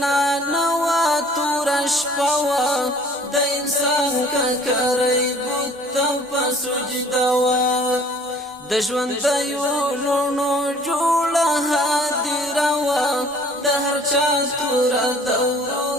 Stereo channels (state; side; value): normal; both; correlation 0.53